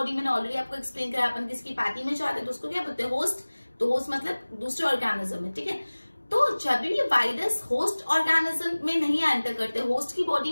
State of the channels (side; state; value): both; inverted; correlation -1.00